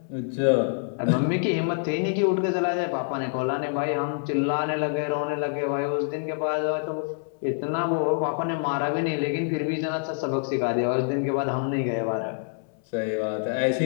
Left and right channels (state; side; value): silent; right; 61 dB below the other